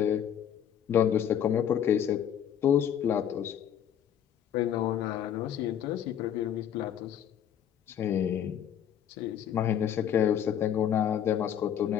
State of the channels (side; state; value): right; quieter; 9.5 dB